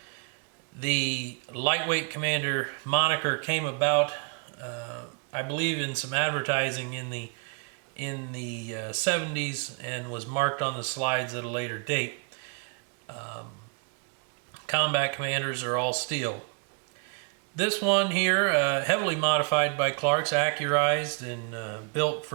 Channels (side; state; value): left; quieter; 37.1 dB